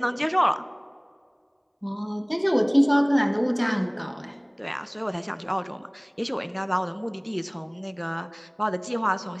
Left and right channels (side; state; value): both; identical; correlation 1.00